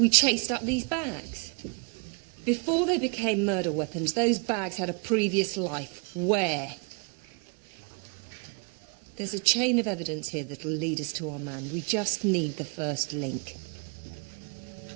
chased up these bags? Before they became murder weapons, those bags had a previous life. Where? There's a chain of evidence here that'll lead us to our man. We just need the first link.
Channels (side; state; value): left; quieter; 35.2 dB